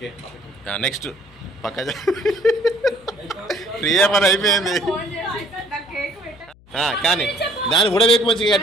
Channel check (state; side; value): noise; left; hum, 26 dB below the sound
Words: నెక్స్ట్ పక్క ఫ్రీయా పని అయిపోయింది కానీ దాన్ని కూడా వేకు మంచిగా